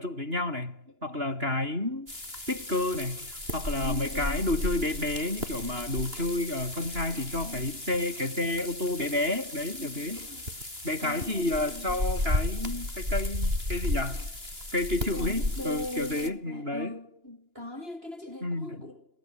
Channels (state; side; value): late; left; 2.9 ms